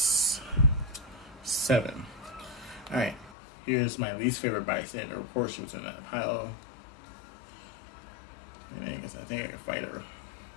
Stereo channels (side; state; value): right; drops out; at 3.4 s